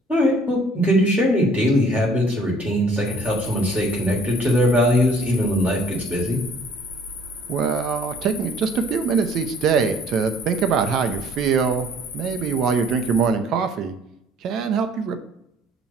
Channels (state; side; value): normal; both; correlation 0.57